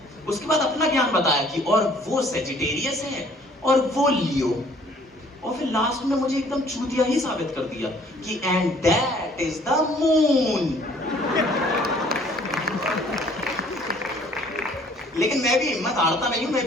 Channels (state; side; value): normal; both; correlation 0.57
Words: उसके बाद अपना ज्ञान बताया कि और वो सेजिटेरियस है और वो लियो, और फिर लास्ट में मुझे एकदम चूतिया ही साबित कर दिया कि and that is the moon. लेकिन मैं भी हिम्मत हारता नहीं हूं, मैं